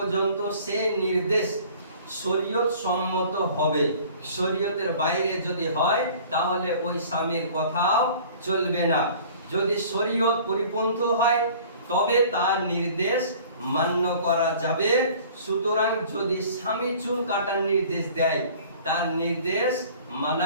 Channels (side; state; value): both; inverted; correlation -0.48